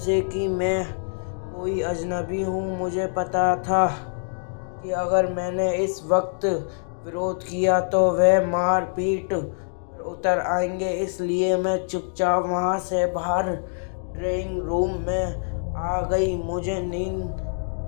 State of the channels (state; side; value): silent; right; digital silence